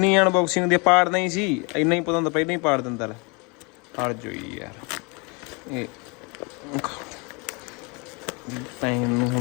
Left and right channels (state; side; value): quieter; right; 31.5 dB